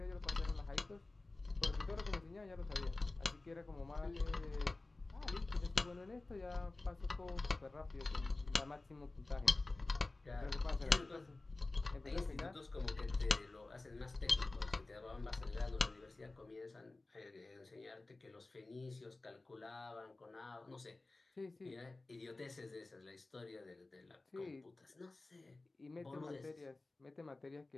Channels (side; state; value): right; quieter; 3.2 dB